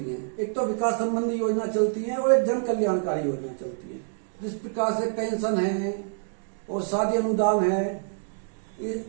है, एक तो विकास संबंधी योजना चलती है और एक जन कल्याणकारी योजना चलती है। जिस प्रकार से पेंशन है और शादी अनुदान है,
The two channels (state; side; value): silent; left; digital silence